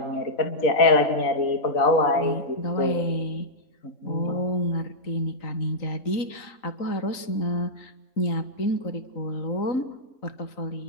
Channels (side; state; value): right; late; 3.9 ms